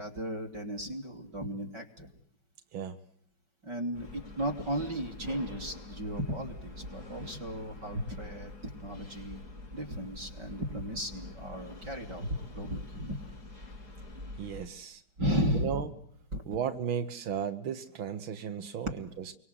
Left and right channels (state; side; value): late; left; 5.3 ms